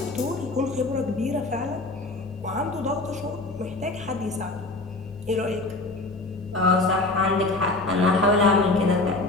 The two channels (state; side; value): quieter; right; 3.1 dB